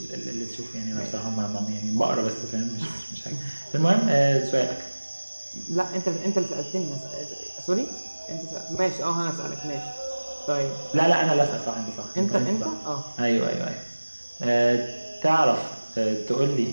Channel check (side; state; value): both; inverted; correlation -1.00